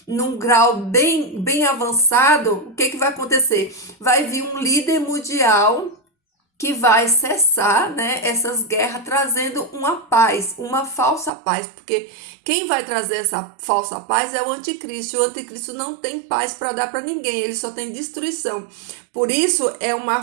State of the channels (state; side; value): drops out; left; at 11.3 s